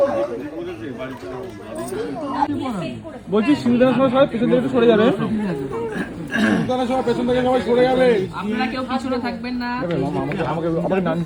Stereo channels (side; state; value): both; identical; correlation 1.00